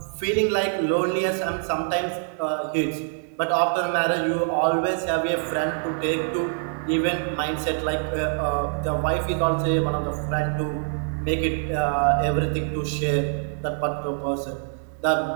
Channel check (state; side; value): silent; left; 62 dB below the other